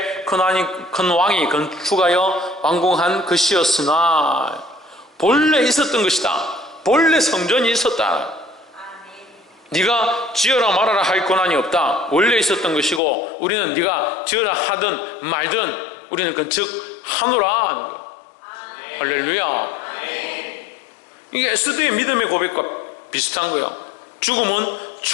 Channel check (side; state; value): right; drops out; at 13.0 s